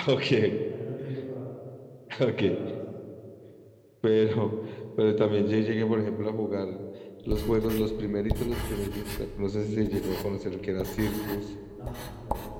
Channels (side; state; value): both; identical; correlation 1.00